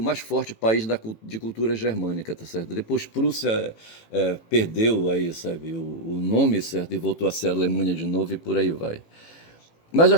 mais forte país de cultura germânica, tá certo? Depois Prússia perdeu aí, sabe, o nome, certo, e voltou a ser Alemanha de novo e por aí vai. Mas eu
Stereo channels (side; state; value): right; late; 18 ms